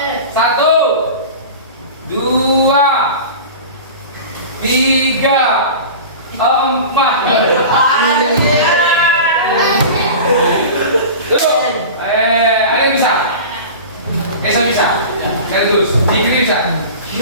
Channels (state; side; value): inverted; both; correlation -0.34